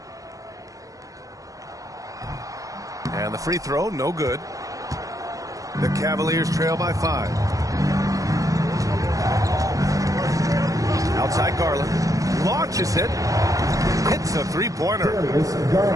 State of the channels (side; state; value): left; late; 0.16 ms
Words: And the free throw, no good. The Cavaliers trail by 5. Outside Garland. Launches it. Hits a three-pointer.